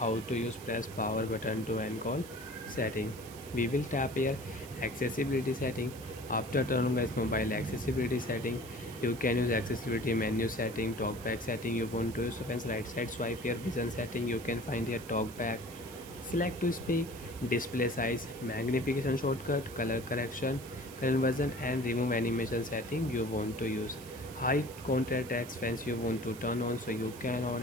to use press power button to end call setting, we will tap here accessibility setting. After turn on guys mobile accessibility setting, you can use accessibility menu setting, talkback setting you want to use. So friends, right side swipe here, vision setting, you can find here talkback, select to speak, display size, magnification shortcut, color correction, conversion, and remove animation setting you want to use. High contrast text fence you want to turn on, so you can on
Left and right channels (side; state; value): right; noise; hiss, 17 dB below the sound